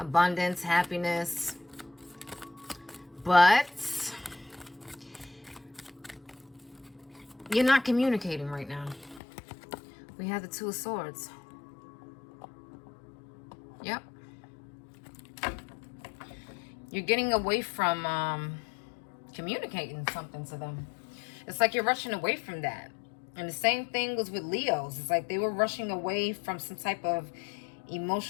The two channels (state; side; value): drops out; right; at 9.2 s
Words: happiness. But you're not communicating right now. We have the Two of Swords. Yep. You're getting away from communicating something to them. It's like you're rushing away from that. And the same thing was with Leos. It's like they were rushing away from some type of